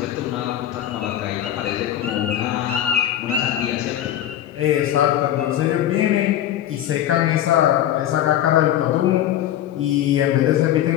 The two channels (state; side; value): quieter; right; 11.8 dB